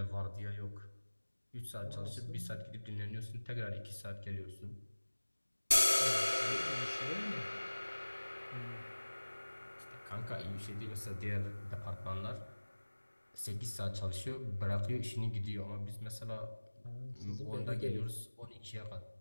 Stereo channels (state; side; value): inverted; both; correlation -1.00